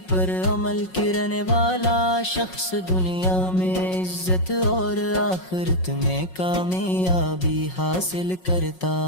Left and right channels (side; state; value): right; late; 5.5 ms